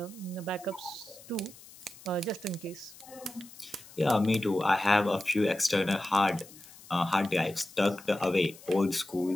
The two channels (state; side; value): noise; left; hiss, 20 dB below the sound